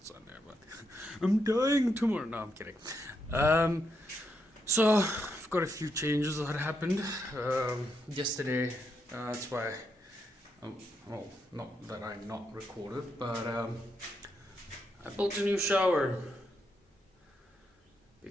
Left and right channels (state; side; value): normal; both; correlation 0.80